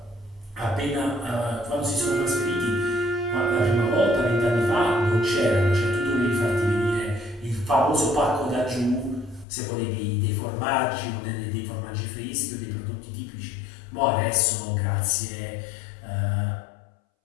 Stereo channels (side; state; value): right; drops out; at 9.5 s